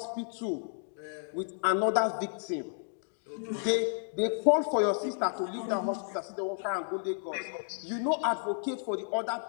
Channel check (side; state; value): right; silent; digital silence